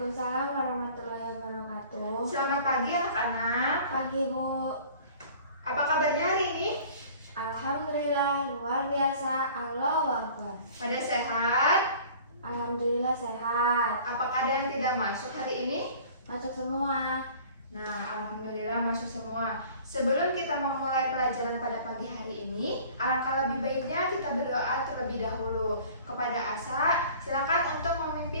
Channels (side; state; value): both; inverted; correlation -0.48